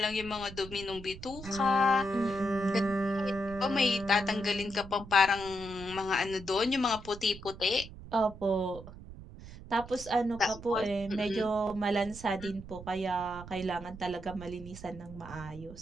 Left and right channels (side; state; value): right; noise; rumble, 14 dB below the sound